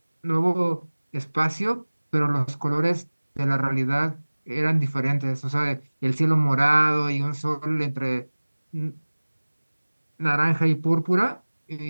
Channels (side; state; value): both; inverted; correlation -1.00